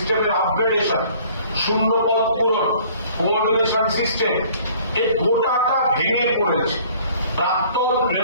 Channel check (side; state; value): both; inverted; correlation -0.54